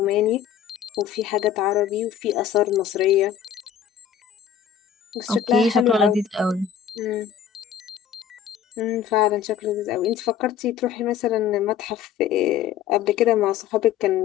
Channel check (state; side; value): quieter; right; 8.9 dB